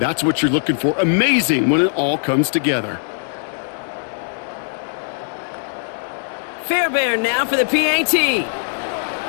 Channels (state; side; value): silent; right; 66 dB below the other